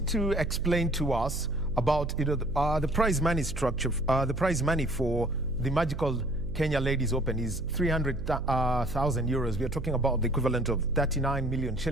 to explain to us about the prize money structure. The prize money for the magical Kenya Ladies Open is 300,000 euros. We are talking about the equivalent of 39 million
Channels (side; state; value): right; noise; hum, 7 dB below the sound